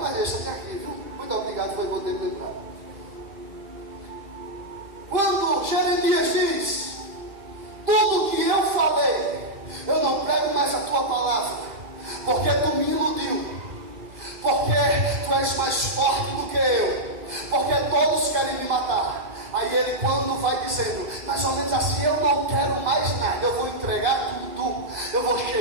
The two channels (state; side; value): late; left; 2.6 ms